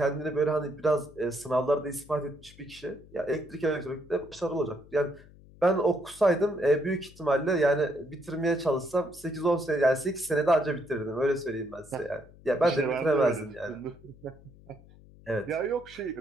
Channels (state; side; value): noise; left; hum, 23 dB below the sound